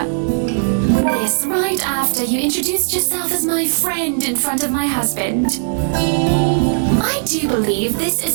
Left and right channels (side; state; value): left; silent; 68 dB below the other